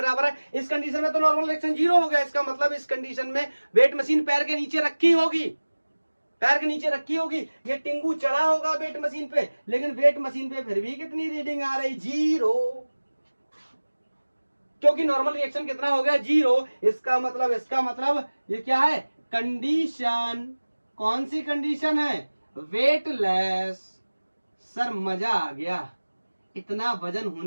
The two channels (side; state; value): both; inverted; correlation -1.00